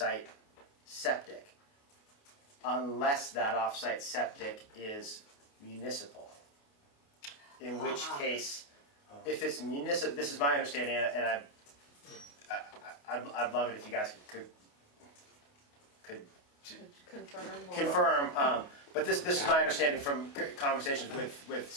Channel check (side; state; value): right; late; 28 ms